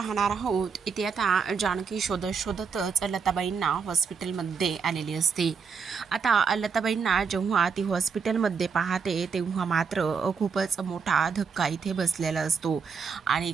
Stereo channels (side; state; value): left; quieter; 5.8 dB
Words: आहोत. इथे आता जानकी शोधत शोधतच लताबाईंना हॉस्पिटलमध्ये आलेली असते. आता लताबाईंना जेव्हा ती हॉस्पिटलमध्ये पाहते तेव्हा मात्र खूपच मोठा धक्का इथे बसलेला असतो आणि